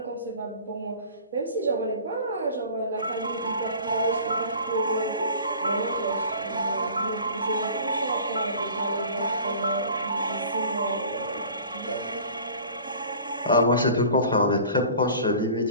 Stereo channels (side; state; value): both; inverted; correlation -0.44